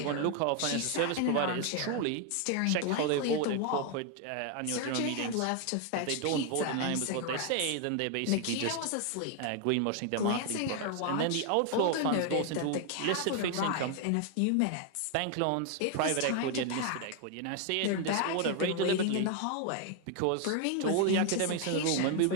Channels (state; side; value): different; both; correlation 0.00